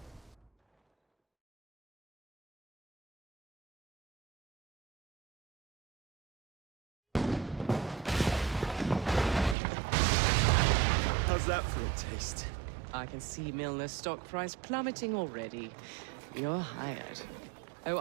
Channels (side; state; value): left; drops out; at 9.6 s